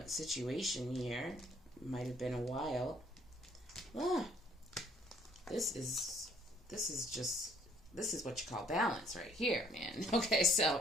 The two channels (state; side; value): normal; both; correlation 0.62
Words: situation here. Might have been a while. This is what you call balance right here, man. Okay, so